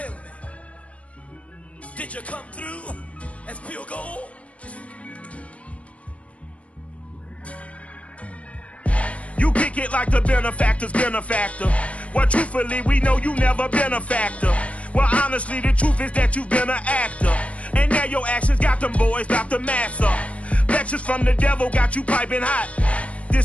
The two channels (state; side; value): late; right; 0.064 ms